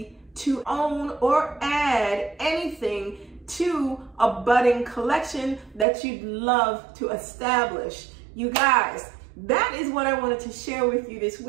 to own or add anything to a budding collection that you'd love to establish. You guys, that is what I wanted to share with you this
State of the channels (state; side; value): drops out; left; at 5.9 s